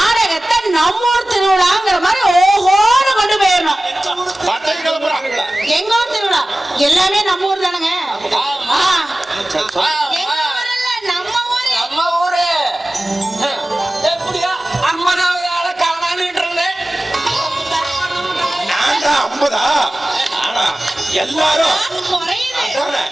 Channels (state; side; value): normal; both; correlation 0.97